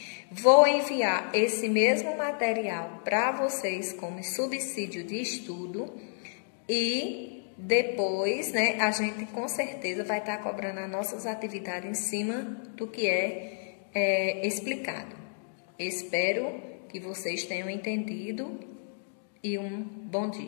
Vou enviar esse mesmo material para vocês como subsídio de estudo e depois, né, a gente com certeza vai estar cobrando as nossas atividades em cima do que é explicado. Espero que vocês tenham entendido e um bom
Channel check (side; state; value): right; silent; digital silence